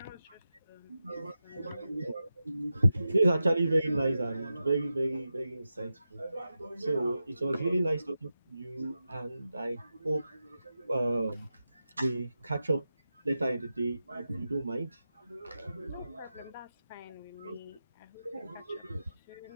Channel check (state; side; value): inverted; both; correlation -0.91